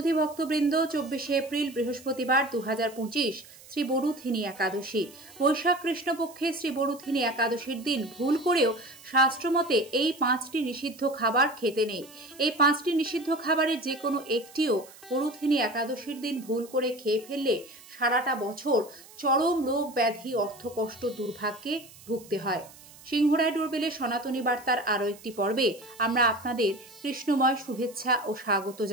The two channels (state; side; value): noise; right; hiss, 21 dB below the sound